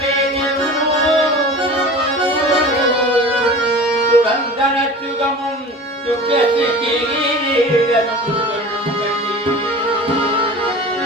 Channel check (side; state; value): both; normal; correlation 0.37